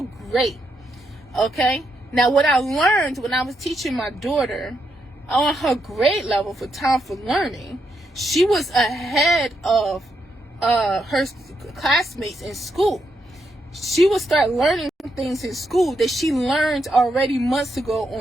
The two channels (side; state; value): both; normal; correlation 0.80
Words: great, okay? Now, what I learned when I was teaching my daughter on her grade level for Time for Learning, she was ahead of her classmates in school. She would start learning things in school that she learned already months ago